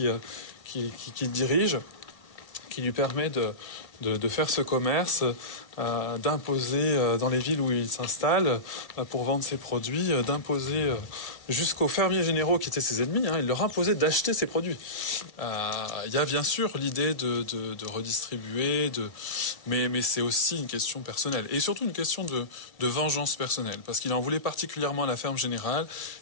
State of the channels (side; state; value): right; late; 1.8 ms